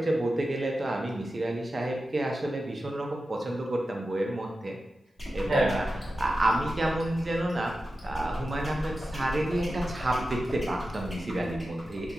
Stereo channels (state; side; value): normal; both; correlation 0.92